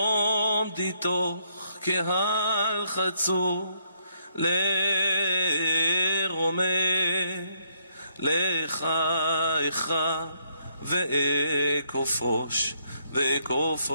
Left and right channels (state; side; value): inverted; both; correlation -0.73